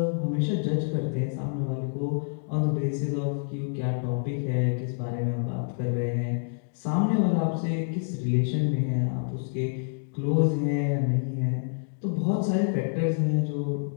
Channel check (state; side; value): silent; right; digital silence